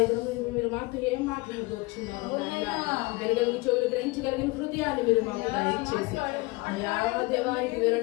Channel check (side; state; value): right; quieter; 23.7 dB